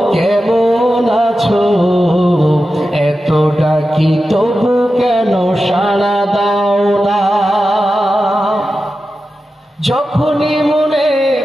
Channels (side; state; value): both; normal; correlation 0.92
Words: কেমন আছো, এত ডাকি তবু কেন সাড়া দাও না। যখনই মনে